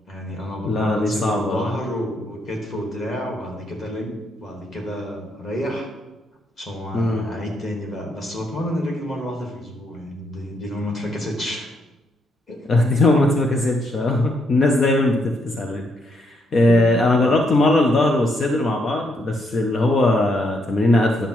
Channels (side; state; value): both; normal; correlation 0.76